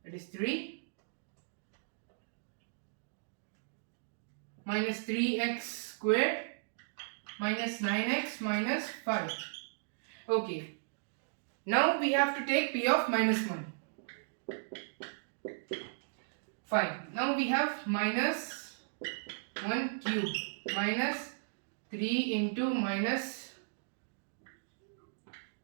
that is 3, minus 3x squared minus 9x minus 5. Okay, now we have to take p of minus 1. Fine, now we have minus 1 cube minus 3 into minus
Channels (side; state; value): left; silent; digital silence